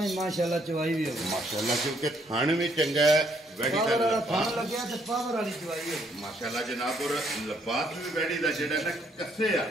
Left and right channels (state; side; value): normal; both; correlation 0.69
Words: ਹੀ ਮਾਸ਼ਾਅੱਲਾ ਚਵਾਈ ਵੀ ਹੋਵੇ ਮਾਸ਼ਾਅੱਲਾ ਕਿਉਂਕਿ ਥਣ ਵੀ ਚੰਗਾ ਹੈ ਵੈੜੀ ਦਾ ਥਣ ਲੱਗਿਆ ਤੇ ਪਾਵਰ ਵਾਲੀ ਚਵਾਈ ਹੋਵੇ ਮਾਸ਼ਾਅੱਲਾ ਜਨਾਬ ਔਰ ਲਬਾਸ ਵੀ ਵੈੜੀ ਦਾ ਜਿਹੜਾ ਨਾ ਕੱਸੇ ਆ